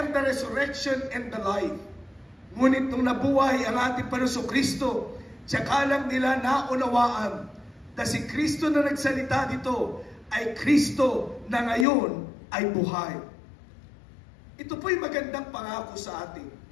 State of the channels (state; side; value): drops out; right; at 11.9 s